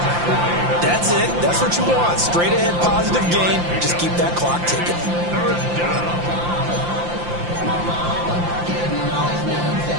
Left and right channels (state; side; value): late; left; 5.8 ms